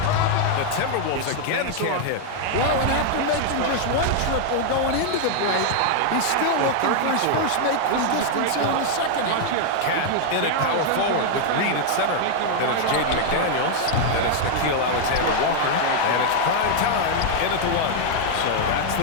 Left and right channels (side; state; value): both; different; correlation 0.00